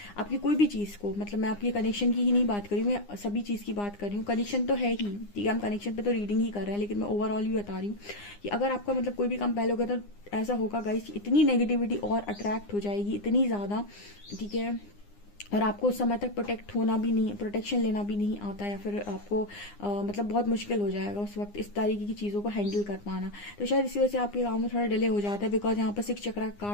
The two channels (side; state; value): right; late; 9.8 ms